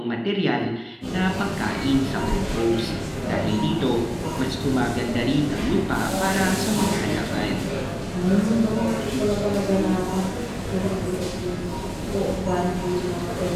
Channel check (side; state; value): both; identical; correlation 1.00